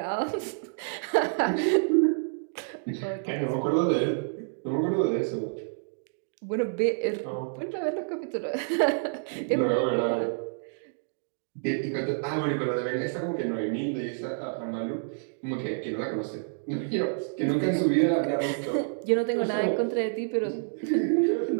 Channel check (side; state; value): left; silent; digital silence